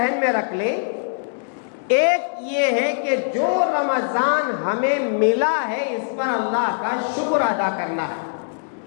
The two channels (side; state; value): right; silent; 64 dB below the other